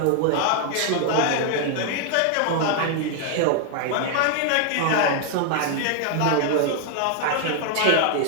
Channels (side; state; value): both; different; correlation 0.00